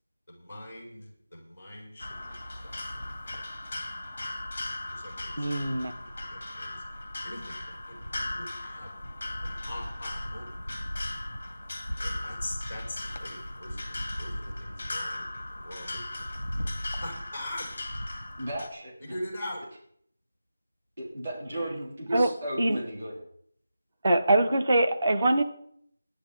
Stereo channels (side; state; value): both; inverted; correlation -0.89